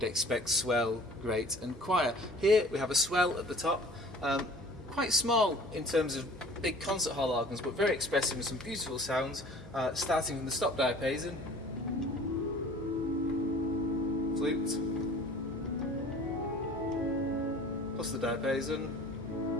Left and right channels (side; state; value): right; noise; hum, 17 dB below the sound